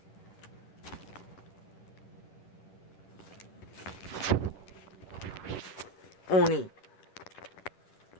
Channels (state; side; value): late; right; 10 ms